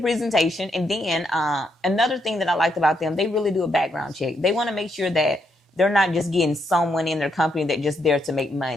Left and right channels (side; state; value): both; normal; correlation 0.77